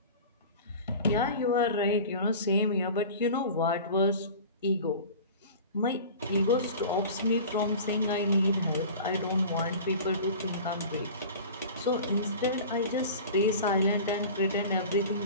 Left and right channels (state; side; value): inverted; both; correlation -0.38